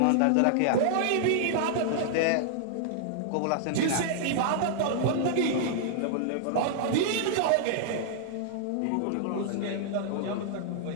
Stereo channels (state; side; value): different; both; correlation -0.01